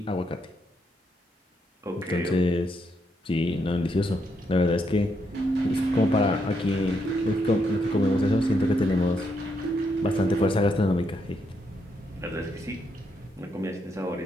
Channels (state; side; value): normal; both; correlation 0.78